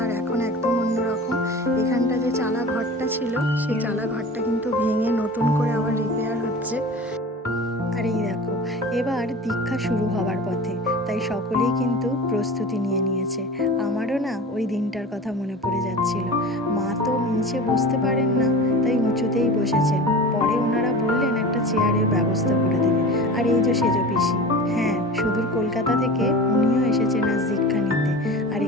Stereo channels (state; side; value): normal; both; correlation 0.35